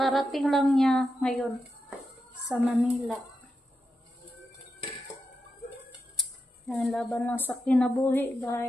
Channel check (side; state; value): both; normal; correlation 0.88